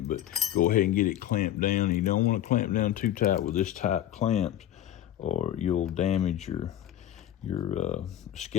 but go ahead and get it clamped down. You don't want to clamp down too tight with this type clamps, or you'll damage your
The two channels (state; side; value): quieter; right; 11.8 dB